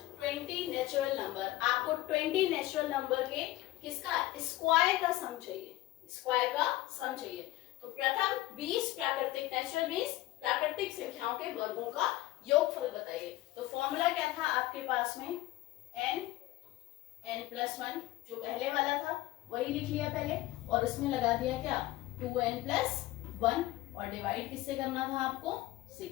20 natural number. आपको 20 नेचुरल नंबर के किसका स्क्वायर का सम चाहिए, स्क्वायर का सम चाहिए। तो प्रथम 20 प्राकृतिक, नेचुरल 20 प्राकृतिक संख्याओं के वर्गों का योगफल बताइए। तो फॉर्मूला क्या था आपके पास में, n+1 जो पहले वाला था वही लिख लिया पहले, और उसमें लगा दिया क्या, 2n+1, और डिवाइड किससे करना था आपको, 6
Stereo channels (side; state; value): right; quieter; 16.9 dB